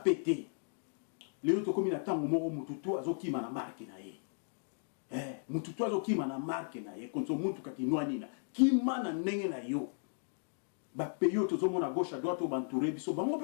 Lelo to komi na tango moko mututu azokima na marque na ye. Mututu azokima na marque na ye konso muntu kakinwa nina kima na ndenge na yo ba peyo tozomona gauche à droite obantouré biso bango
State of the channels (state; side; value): silent; right; digital silence